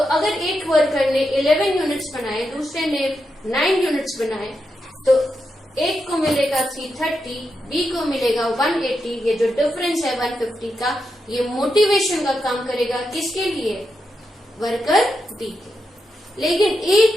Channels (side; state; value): both; normal; correlation 0.86